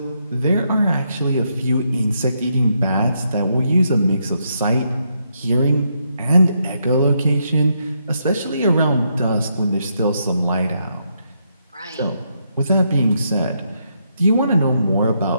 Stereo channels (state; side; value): inverted; both; correlation -0.78